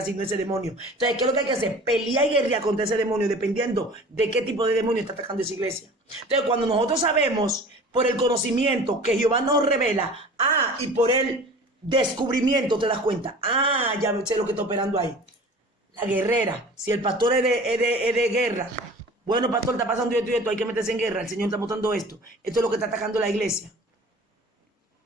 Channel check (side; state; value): both; normal; correlation 0.42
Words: ese demonio. Entonces, ¿qué es lo que hay que hacer? Pelear y guerrear contra ese demonio dependiendo de qué tipo de demonio está atacando esa iglesia. Entonces, cuando nosotros sabemos por el conocimiento que Jehová nos revela, y por el descubrimiento te das cuenta, ya sé lo que está operando ahí. La guerrera, si el pastor es de guerra, bueno, pastor, está pasando esto y esto, hay que meterse en guerra, el Señor está mostrando esto. Esto es lo que está atacando la iglesia.